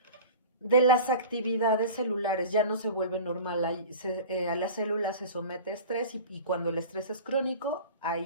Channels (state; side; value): inverted; both; correlation -0.37